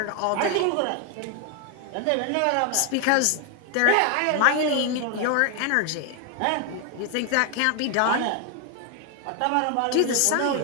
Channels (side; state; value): both; different; correlation 0.01